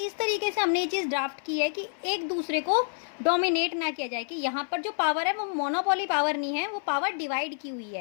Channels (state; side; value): silent; right; 56 dB below the other